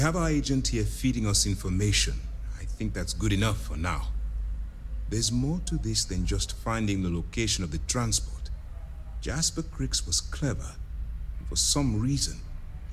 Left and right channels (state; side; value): identical; both; correlation 1.00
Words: our agent here feeding us information. I think that's good enough for now. There's more to this than just finding the location of the transport. Jasper Cricks was clever. For some reason,